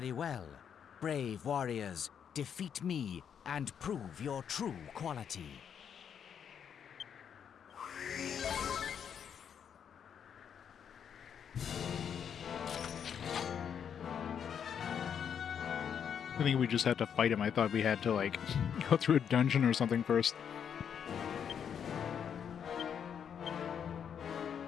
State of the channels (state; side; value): quieter; right; 8.0 dB